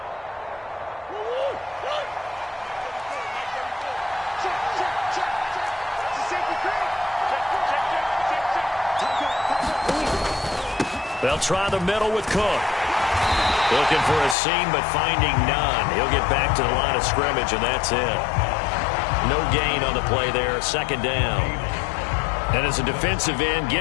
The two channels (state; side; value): drops out; right; at 14.4 s